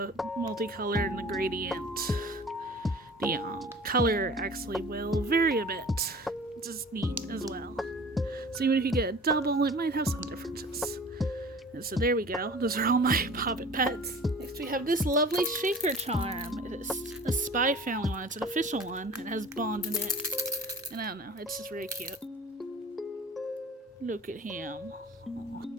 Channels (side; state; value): both; normal; correlation 0.43